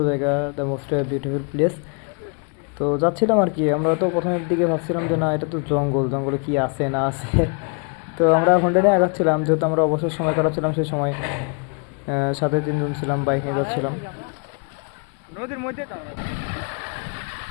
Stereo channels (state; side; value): quieter; right; 38.3 dB